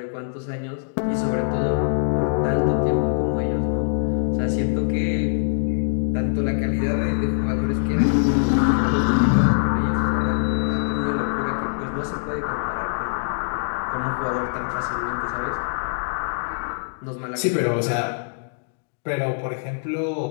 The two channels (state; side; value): silent; right; digital silence